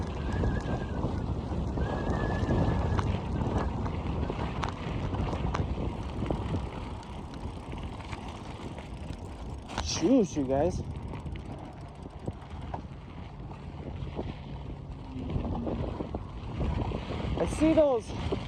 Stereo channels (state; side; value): identical; both; correlation 1.00